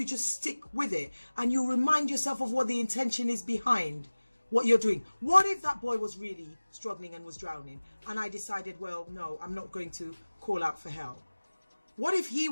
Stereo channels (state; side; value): inverted; both; correlation -1.00